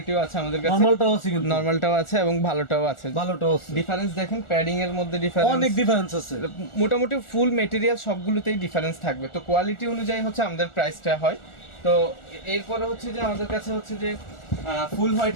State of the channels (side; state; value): right; late; 1.4 ms